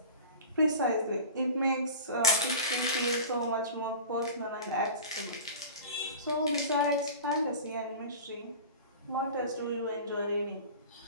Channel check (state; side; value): inverted; both; correlation -0.35